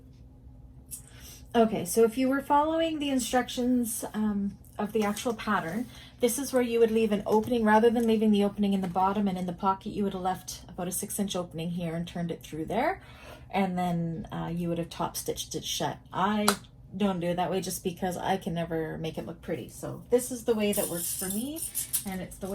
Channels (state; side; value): identical; both; correlation 1.00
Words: Okay, so if you were following the instructions of the actual pattern, this is where you would leave an opening. Rather than leaving the opening in the bottom and in the pocket, you would have left about a 6-inch opening here and turned it through there. And then you would have top stitched it shut. I don't do it that way just because I can never make it look pretty. So this is the way that works for me, and it's the